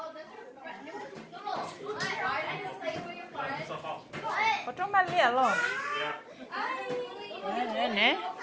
Có trong ban lìa rồi. Nè nè.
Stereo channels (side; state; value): both; identical; correlation 1.00